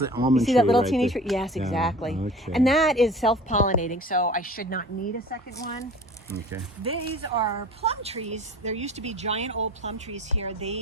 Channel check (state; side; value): normal; both; correlation 0.43